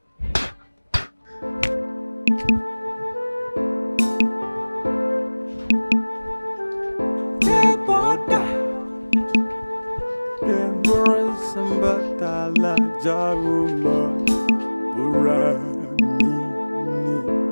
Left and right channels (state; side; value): inverted; both; correlation -1.00